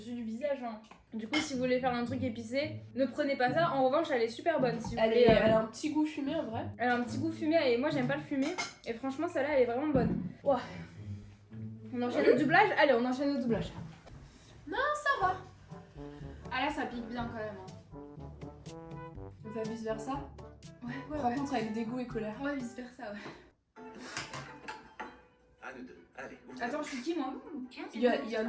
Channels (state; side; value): identical; both; correlation 1.00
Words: du visage, hein. Du coup, si vous voulez faire un truc épicé, ne prenez pas ça. En revanche, elle est super bonne. Si vous Elle, voulez, elle a un petit goût fumé en vrai. elle a un petit goût fumé et moi, j'aime pas le fumé. Et franchement, celle-là, elle est vraiment bonne. Ouah. On enchaîne au doublage? Allez, on enchaîne au doublage. Ça va. Ah là, ça pique bien quand même. Hein. On fait vice versa. Ouais, Par contre, avec dégoût et colère. Ouais, vice versa, ouais. À nous deux. Allez, ouvre. Attends, je suis qui moi? Il y en